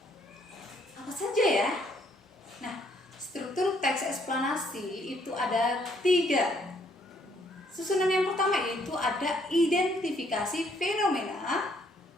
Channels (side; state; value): both; normal; correlation 0.68